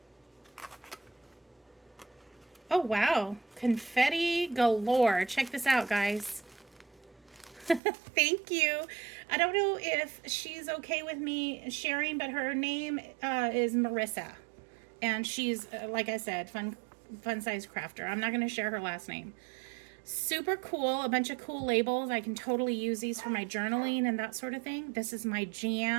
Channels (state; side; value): drops out; left; at 7.8 s